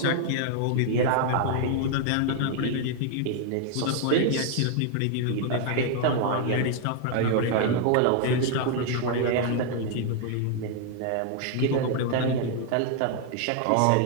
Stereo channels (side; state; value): both; different; correlation 0.00